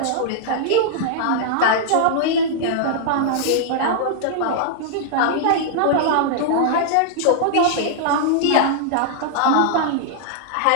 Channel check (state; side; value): different; both; correlation -0.01